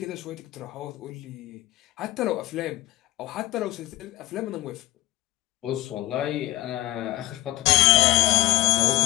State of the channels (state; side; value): quieter; right; 16.6 dB